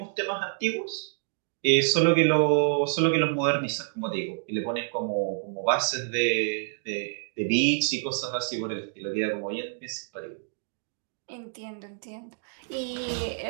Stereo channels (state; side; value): silent; left; digital silence